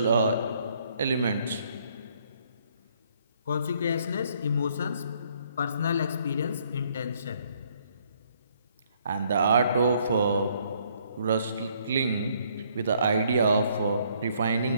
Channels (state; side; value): inverted; both; correlation -0.66